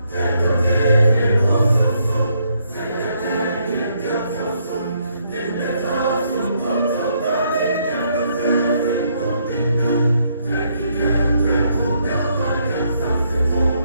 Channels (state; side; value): inverted; both; correlation -0.73